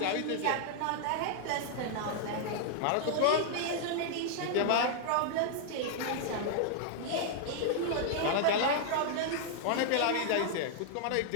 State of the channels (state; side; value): different; both; correlation -0.01